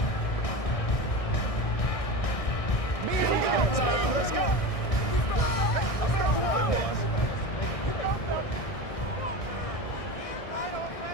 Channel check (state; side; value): late; right; 1.6 ms